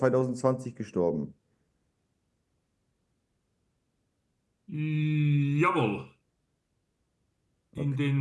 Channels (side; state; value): both; identical; correlation 1.00